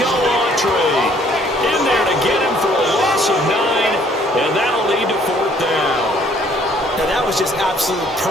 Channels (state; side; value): normal; both; correlation 0.61